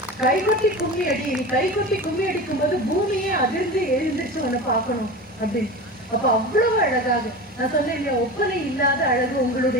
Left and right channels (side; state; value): both; normal; correlation 0.30